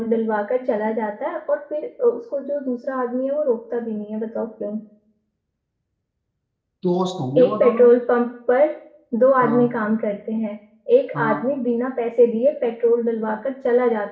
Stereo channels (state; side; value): identical; both; correlation 1.00